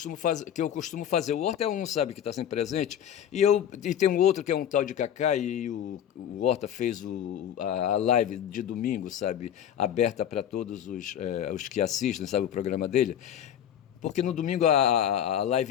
fazer. O Horta é um, sabe, que está sempre presente, e tem um outro que é um tal de Cacá, e o Horta fez a live de domingo, sabe, aberta para todos os que assistem, sabe, o programa dele. Porque no domingo a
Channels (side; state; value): right; quieter; 9.9 dB